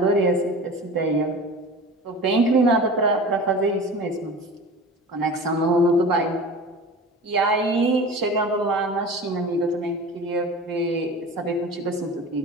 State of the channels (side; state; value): both; normal; correlation 0.35